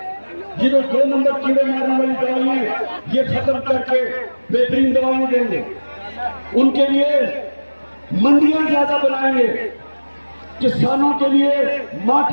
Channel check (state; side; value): inverted; both; correlation -1.00